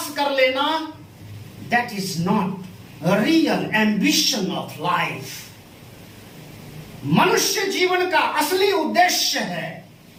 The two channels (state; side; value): identical; both; correlation 1.00